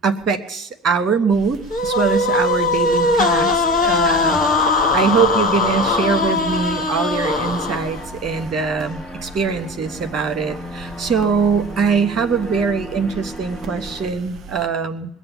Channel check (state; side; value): normal; both; correlation 0.36